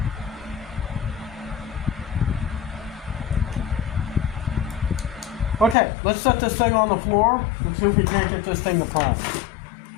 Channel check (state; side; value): drops out; right; at 5.8 s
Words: Okay, let's set this thing on the floor and see if we can't get this thing to prime.